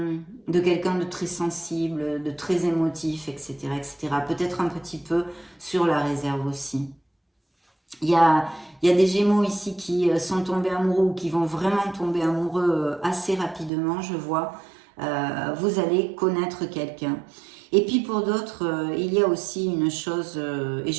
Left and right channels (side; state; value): left; drops out; at 13.7 s